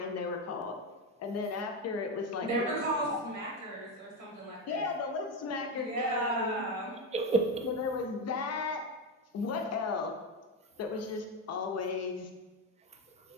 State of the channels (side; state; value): both; normal; correlation 0.13